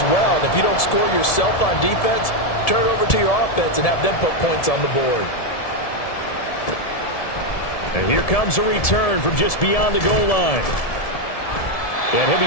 well. And if you don't score yourself on defense, turn it over to your offense and have them put points on the board. And here comes a return from just beyond the goal line. And he'll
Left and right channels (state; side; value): late; right; 1.7 ms